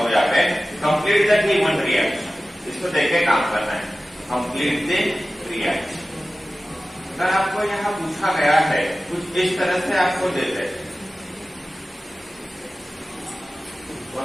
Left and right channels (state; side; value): normal; both; correlation 0.96